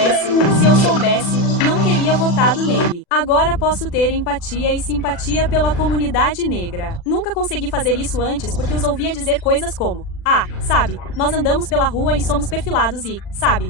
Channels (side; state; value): right; late; 40 ms